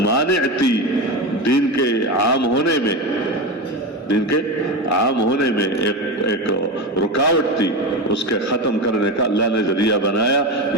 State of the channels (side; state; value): both; normal; correlation 0.20